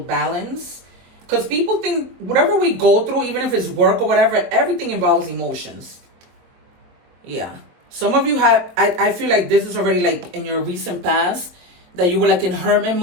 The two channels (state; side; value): late; left; 23 ms